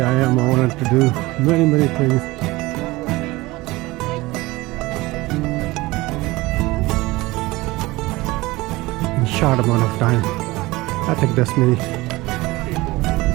I am, I wanted to do many things. In short amount of time. I think that's me.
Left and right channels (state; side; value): quieter; left; 20.7 dB